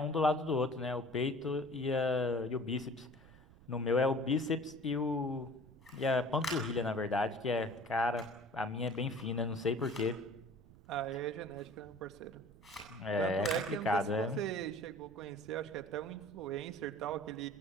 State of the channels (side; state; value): right; noise; rumble, 22 dB below the sound